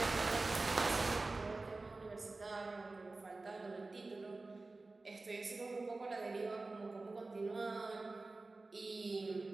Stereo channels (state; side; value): quieter; left; 3.4 dB